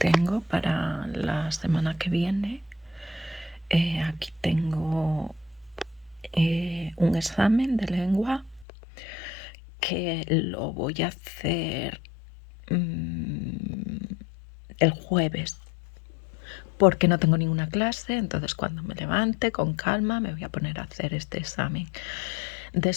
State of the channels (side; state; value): right; drops out; at 8.7 s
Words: para la semana que viene. Aquí tengo un examen de lengua que lo voy a hacer el jueves, porque no tengo ninguna clase. Entonces, cuando me levante con calma me voy a poner a hacer este examen.